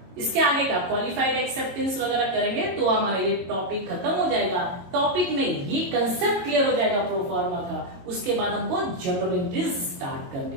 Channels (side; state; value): left; late; 22 ms